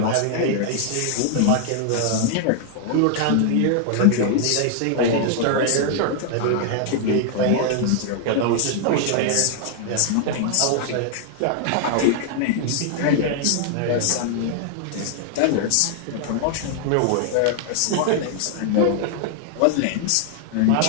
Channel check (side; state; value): both; different; correlation 0.00